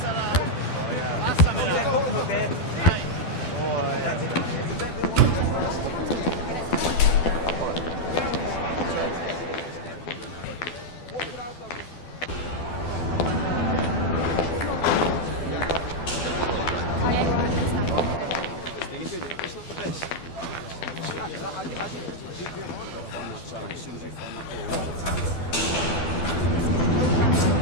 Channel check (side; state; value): right; late; 12 ms